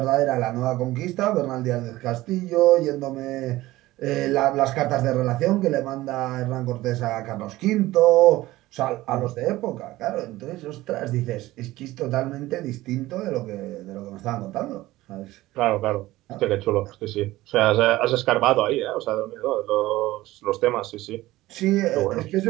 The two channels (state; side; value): quieter; left; 17.4 dB